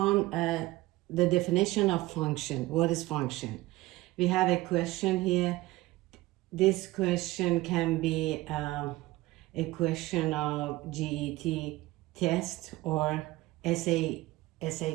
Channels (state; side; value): quieter; left; 18.8 dB